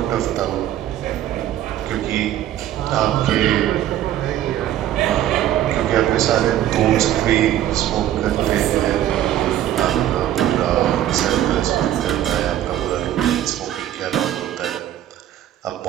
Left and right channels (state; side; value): quieter; left; 12.2 dB